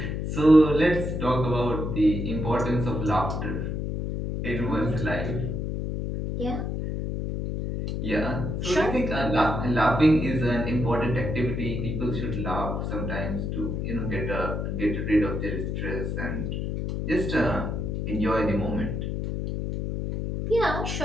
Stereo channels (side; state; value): left; noise; hum, 2 dB below the sound